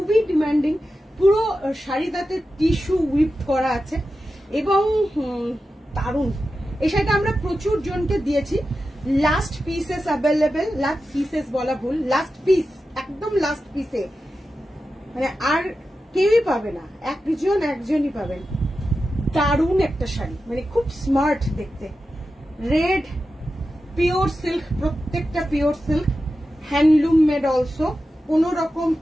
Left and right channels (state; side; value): normal; both; correlation 0.92